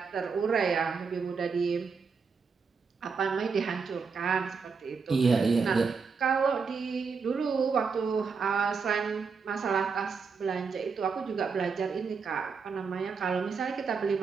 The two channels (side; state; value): left; quieter; 5.3 dB